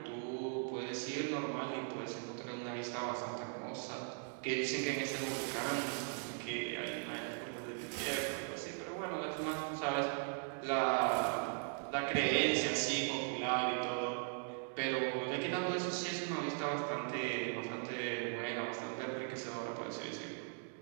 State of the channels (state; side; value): silent; left; 52 dB below the other